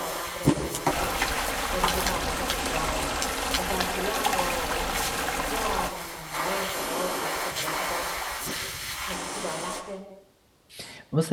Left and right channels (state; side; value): identical; both; correlation 1.00